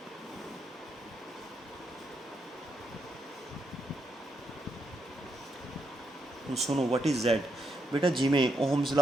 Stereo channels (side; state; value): both; normal; correlation 0.81